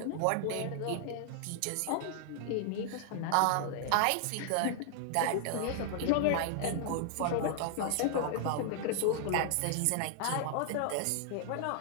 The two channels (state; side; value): different; both; correlation 0.00